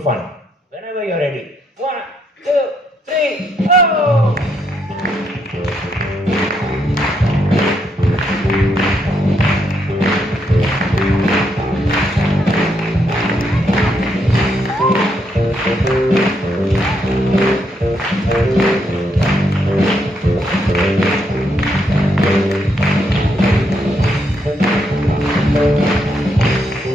fun. Whenever you're ready. 1, 2, 3, go!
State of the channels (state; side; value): normal; both; correlation 0.76